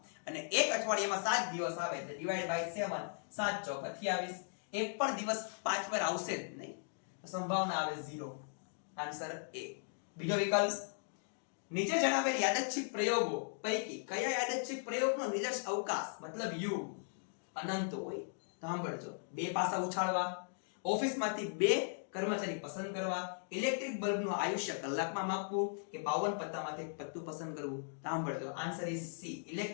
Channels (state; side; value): silent; right; digital silence